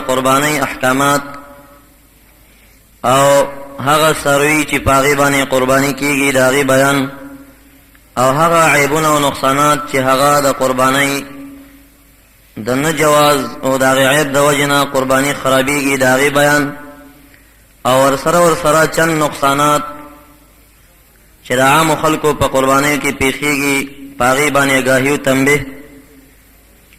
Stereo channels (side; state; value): both; identical; correlation 1.00